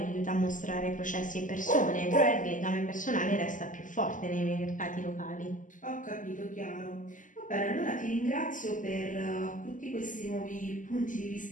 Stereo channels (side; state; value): right; late; 0.38 ms